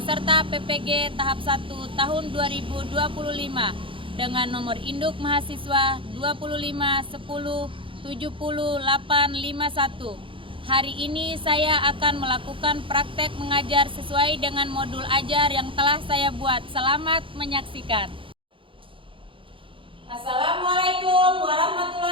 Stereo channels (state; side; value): late; left; 0.25 ms